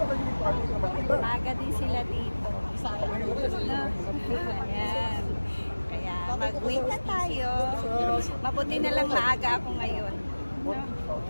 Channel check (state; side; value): inverted; both; correlation -1.00